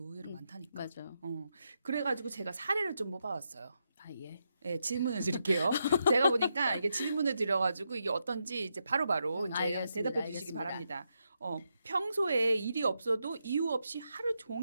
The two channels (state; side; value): inverted; both; correlation -0.83